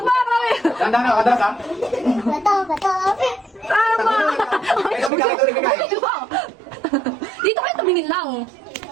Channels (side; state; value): left; drops out; at 5.1 s